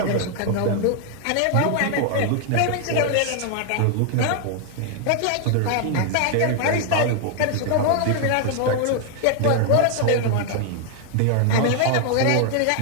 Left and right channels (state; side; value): different; both; correlation 0.00